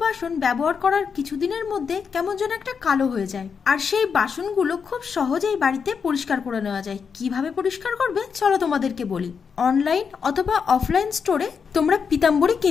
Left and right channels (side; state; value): right; quieter; 6.2 dB